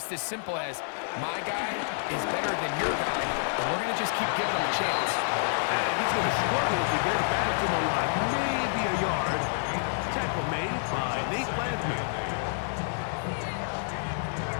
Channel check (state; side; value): silent; right; 58 dB below the other